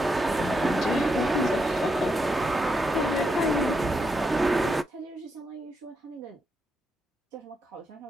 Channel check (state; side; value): normal; both; correlation 0.82